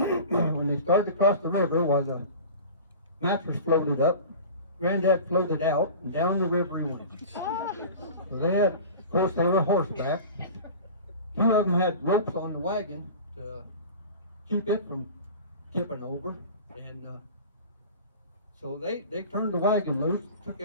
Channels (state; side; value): inverted; both; correlation -0.37